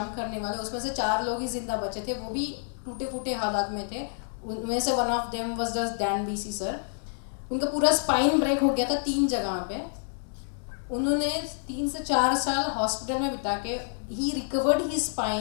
करने वाले, उसमें से 4 लोग ही जिंदा बचे थे, वो भी टूटे फूटे हालात में थे। उनमें से one of them was the Dan BC sir. उनका पूरा स्पाइन ब्रेक हो गया था 3 जगह पे। उन्होंने 3 से 4 साल हॉस्पिटल में बिता के he recovered his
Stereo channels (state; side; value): silent; right; digital silence